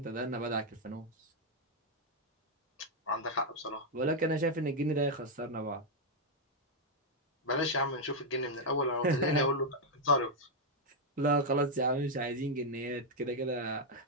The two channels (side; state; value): both; normal; correlation -0.01